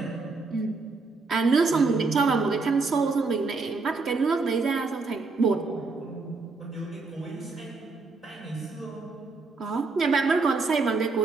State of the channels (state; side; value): quieter; left; 4.0 dB